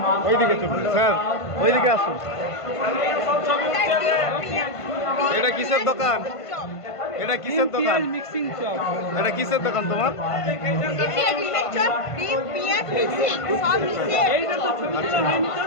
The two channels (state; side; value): late; right; 1.5 ms